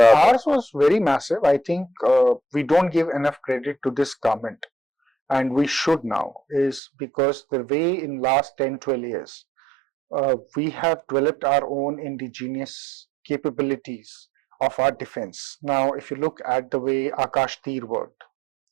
was very massive. I think we don't give enough credit to this government, and we should now, is because the way in last 10-12 years we have developed our own indigenous capabilities of our defense. Now, if you look at the way Akash Tir worked,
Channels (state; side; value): drops out; left; at 6.8 s